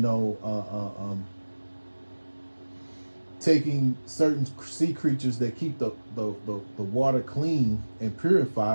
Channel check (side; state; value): both; inverted; correlation -1.00